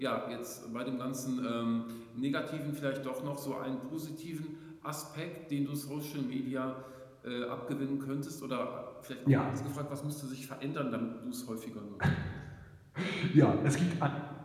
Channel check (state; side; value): identical; both; correlation 1.00